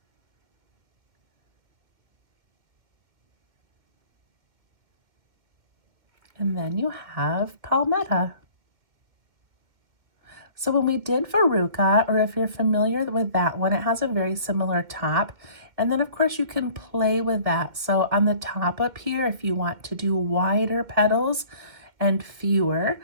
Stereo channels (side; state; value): left; late; 2.1 ms